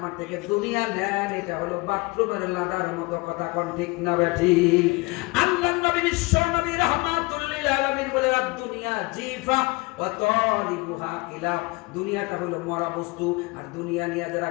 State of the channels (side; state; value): right; quieter; 25.5 dB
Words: থেকে দুনিয়া নেন, এটা হলো বাথরুমের লাদার মতো। কথা কোন ঠিক না ঠিক? আল্লাহর নবী বিশ্ব নবী রাহমাতুল লিল আলামিন বলে, দুনিয়া জিফা ওয়া তালিবুহা কিলাব, দুনিয়াটা হলো মরা বস্তু, আর দুনিয়া নিয়ে যারা